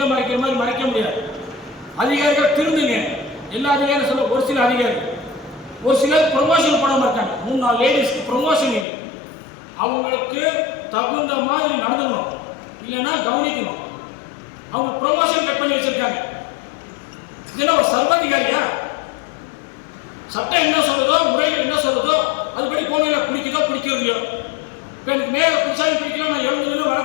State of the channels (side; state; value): right; drops out; at 8.8 s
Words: மறைக்கிற மாதிரி மறைக்க முடியாது. அதிகாரிகள் திருந்துங்க. எல்லா அதிகாரியும் சொல்ல, ஒரு சில அதிகாரி, ஒரு சிலர் ப்ரொமோஷன் பண்ணாமல் இருக்காங்க. 3-4 லேடிஸ்க்கு ப்ரொமோஷன் இல்லை. அவங்களுக்கு தகுந்த மாதிரி நடந்துக்கணும், இல்லைன்னா கவனிக்கணும். அவங்க ப்ரொமோஷன் கட் பண்ணி வச்சிருக்காங்க. இதெல்லாம் ஒரு சர்வாதிகாரியா? சட்டம் என்ன சொல்றதோ, முறைகள் என்ன சொல்றதோ அதுபடி போனையில பிடிக்குதோ பிடிக்கிறதையோ. இப்போ எனக்கு மேயரை பிடிச்சாலும் பிடிக்கல, நான் 70